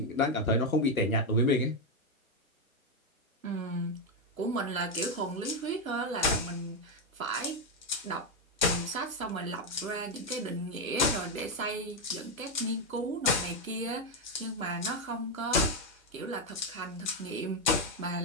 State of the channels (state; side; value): normal; both; correlation 0.06